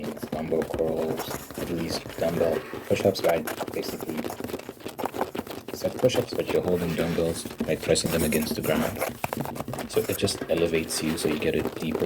dumbbell curls, at least dumbbell push-ups, right? Basically, it's like push-ups, but you're holding dumbbells, like pressing them against the ground. So it just elevates you, so you get a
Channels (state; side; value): identical; both; correlation 1.00